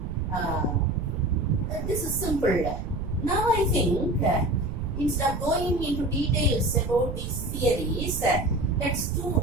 this is simple. Now I think instead of going into details about these theories, let's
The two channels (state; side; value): noise; right; rumble, 6 dB below the sound